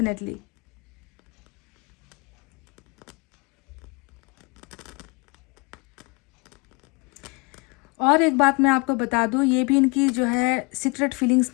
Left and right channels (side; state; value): right; quieter; 30.0 dB